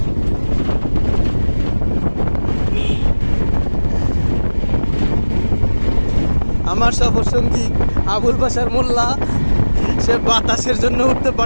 আমার সফরসঙ্গী আবুল বাশার মোল্লা, সে বাতাসের জন্য উঠতে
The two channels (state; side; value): inverted; both; correlation -1.00